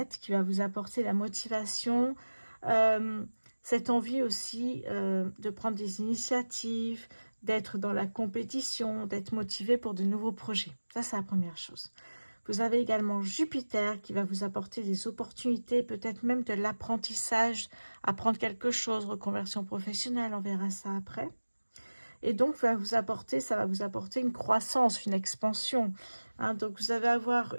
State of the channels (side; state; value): both; inverted; correlation -1.00